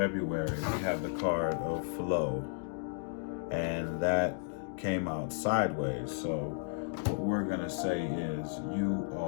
we have the card of flow, and that came out sideways. So what we're gonna say is you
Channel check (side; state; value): right; silent; digital silence